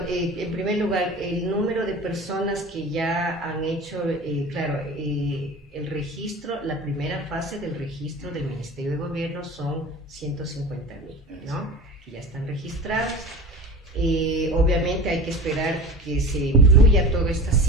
primer lugar, el número de personas que ya han hecho, el registro, la primera fase del registro del Ministerio de Gobierno son 150,000, ¿no? Que ya están registrados. Obviamente hay que esperar que se incluya todas estas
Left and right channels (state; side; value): normal; both; correlation 0.34